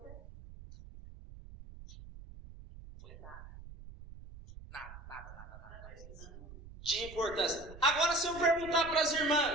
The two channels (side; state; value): right; noise; rumble, 16 dB below the sound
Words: De importância. Agora, se eu perguntar para as